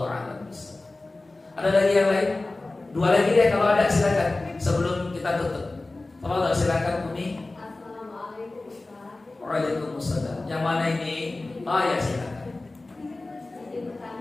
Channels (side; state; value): right; quieter; 3.1 dB